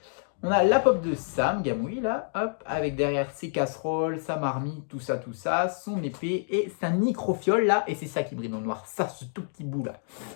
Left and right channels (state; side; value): silent; right; digital silence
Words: On a la pop de Sam Gamgee, là, hop, avec derrière ses casseroles, sa marmite, tout ça, son épée et sa microfiole, là, et c'est ça qui brille dans le noir, ça, ce tout petit bout, là.